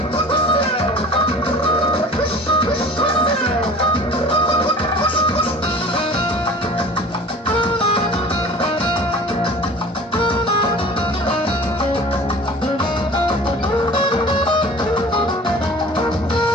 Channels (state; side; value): normal; both; correlation 0.43